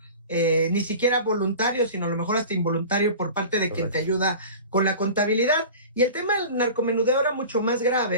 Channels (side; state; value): both; inverted; correlation -0.37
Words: ni siquiera voluntario, sino a lo mejor hasta involuntario por parte de quien te ayuda con la contabilidad. Y el tema del narcomenudeo era mucho más